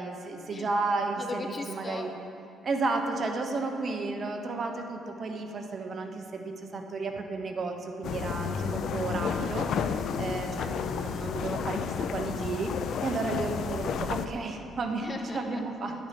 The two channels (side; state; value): both; normal; correlation 0.69